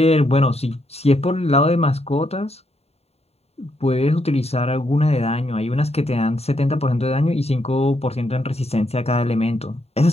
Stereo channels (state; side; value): late; right; 0.30 ms